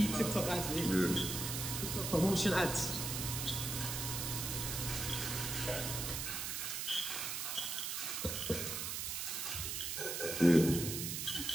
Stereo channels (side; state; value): right; noise; hiss, 3 dB below the sound